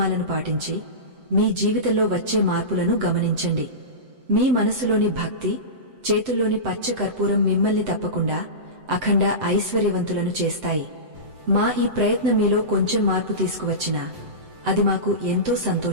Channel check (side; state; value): left; late; 7.8 ms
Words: పాటించి మీ జీవితంలో వచ్చే మార్పులను గమనించండి. మీ మనసులోని భక్తి, చేతుల్లోని పచ్చ కర్పూరం మిమ్మల్ని తప్పకుండా అఖండ ఐశ్వర్యవంతులను చేస్తాయి. మా ఈ ప్రయత్నం మీలో కొంచెం మార్పు తీసుకువచ్చినా అది మాకు ఎంతో